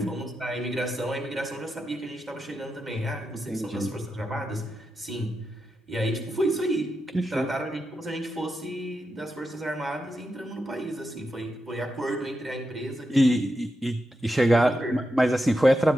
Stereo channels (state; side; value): normal; both; correlation 0.87